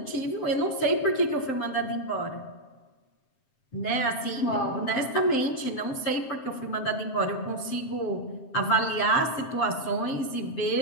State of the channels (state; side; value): late; right; 7.6 ms